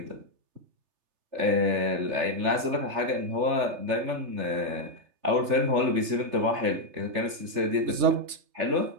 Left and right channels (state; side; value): late; left; 3.3 ms